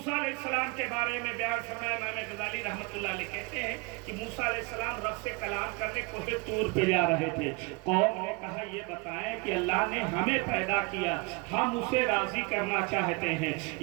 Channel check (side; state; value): left; quieter; 29.2 dB